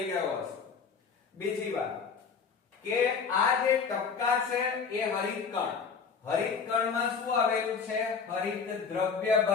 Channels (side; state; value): right; quieter; 5.8 dB